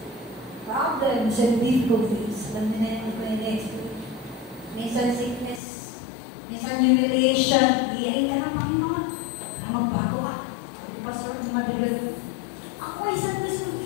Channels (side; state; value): right; drops out; at 5.6 s